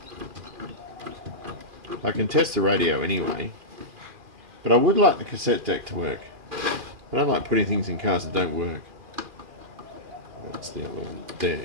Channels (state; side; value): late; left; 2.4 ms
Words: I can test the radio anyway, but I would like the cassette deck to work. I don't like putting things in cars that don't work. What's the other one?